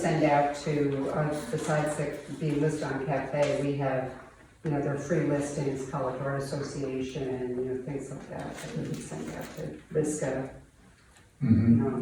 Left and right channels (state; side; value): identical; both; correlation 1.00